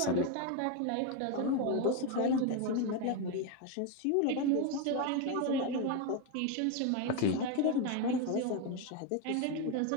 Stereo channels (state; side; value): different; both; correlation 0.02